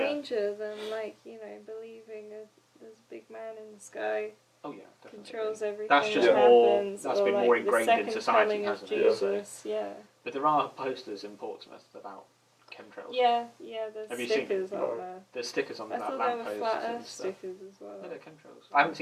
than, like, you know, believing there's a big man in the sky, Oh yeah, definitely. controls everything That's just that more- happens, that's or been like more the ingrained in second society, coming of hasn't it? So- Jesus, yeah. But there are posters in Portsmouth about chemtrails. Yeah, there's Have you seen stickers them? on No. there. There's stickers on I that thought there were lampposts flat and earth stuff. stickers as well. No, they're chemtrails. I haven't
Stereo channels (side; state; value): both; identical; correlation 1.00